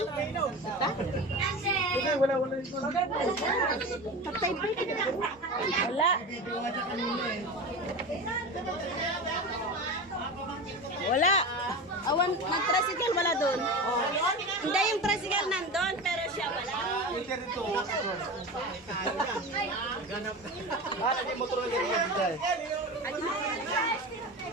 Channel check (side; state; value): both; normal; correlation 0.28